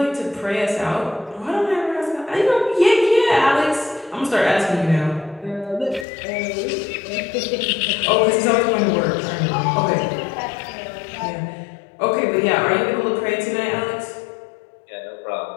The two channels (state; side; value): drops out; right; at 6.1 s